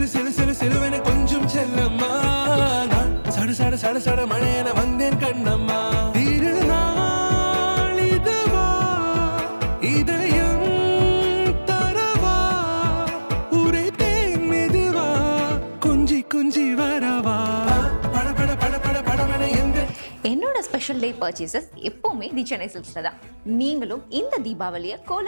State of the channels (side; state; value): both; inverted; correlation -1.00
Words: கொஞ்சம் செல்லம்மா சட சட சட மழையன வந்தேன் கண்ணம்மா. திருநாள் இதுவா இதயம் தரவா உரைத்தேன் மெதுவா கொஞ்சி கொஞ்சி வரவா பட பட பட பட படவன எந்த. என்னோட ஸ்பெஷல் டே பர்ச்சேசஸ் எப்போவுமே தி சென்னை சில்க்ஸில் தான். நீங்களும் இந்த தீபாவளியை